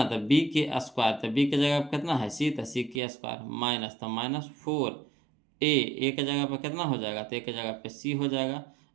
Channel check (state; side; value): drops out; left; at 3.0 s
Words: तो b के स्क्वायर, तो b की जगह पे कितना है c, तो c के स्क्वायर माइनस, तो -4a, a के जगह पे कितना हो जाएगा, तो a के जगह पे c हो जाएगा